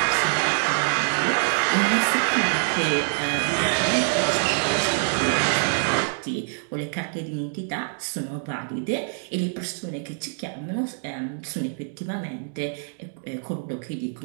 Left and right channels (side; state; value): left; silent; digital silence